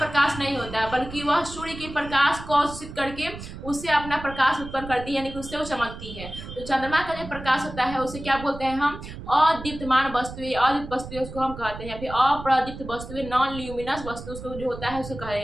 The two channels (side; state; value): right; noise; rumble, 12 dB below the sound